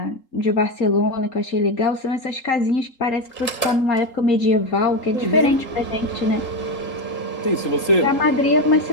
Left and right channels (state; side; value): late; right; 3.8 ms